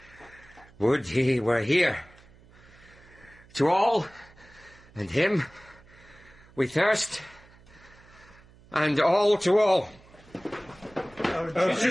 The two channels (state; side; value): noise; right; hum, 25 dB below the sound